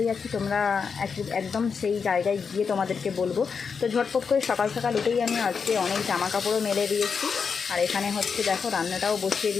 যাচ্ছি তোমরা একদম সেই জায়গায় গিয়ে তোমাদেরকে বলবো। তো ঝটপট করে সকাল সকাল উঠেই আমি আজকে অনেক জামা কাপড়ও মেলে দিয়েছি। আর এখানে হচ্ছে দেখো রান্নাটাও বসিয়ে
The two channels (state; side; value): quieter; right; 5.8 dB